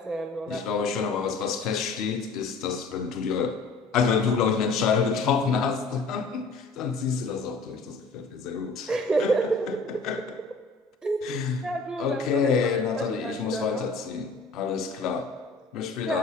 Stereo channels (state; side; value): quieter; right; 3.9 dB